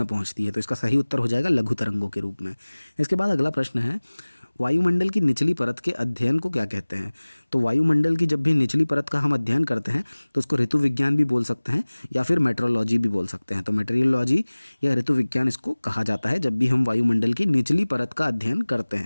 पहुंचती है। तो इसका सही उत्तर हो जाएगा लघु तरंगों के रूप में। इसके बाद अगला प्रश्न है, वायुमंडल की निचली परत के अध्ययन को क्या कहते हैं। तो वायुमंडल की जब भी निचली परत का हम अध्ययन करते हैं तो उसको ऋतु विज्ञान भी बोल सकते हैं या फिर मेट्रोलॉजी भी बोल सकते हैं। तो मेट्रियोलॉजी या ऋतु विज्ञान इसको कहा जाता है जब भी हम वायुमंडल की निचली परत का अध्ययन करते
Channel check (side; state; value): both; inverted; correlation -1.00